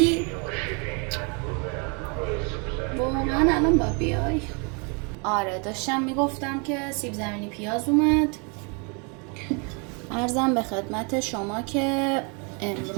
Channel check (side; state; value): left; quieter; 34.8 dB